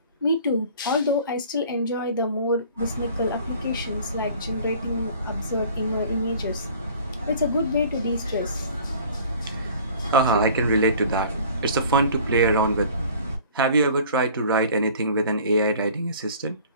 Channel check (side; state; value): both; inverted; correlation -0.49